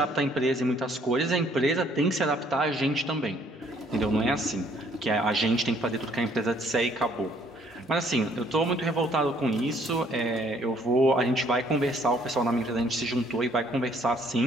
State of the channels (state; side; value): normal; both; correlation 0.63